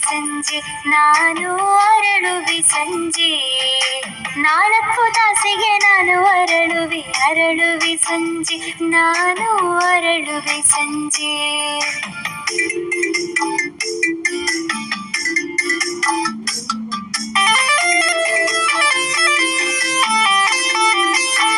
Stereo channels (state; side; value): identical; both; correlation 1.00